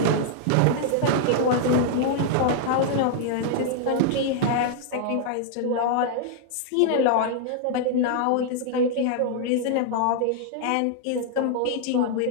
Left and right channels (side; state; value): both; different; correlation -0.01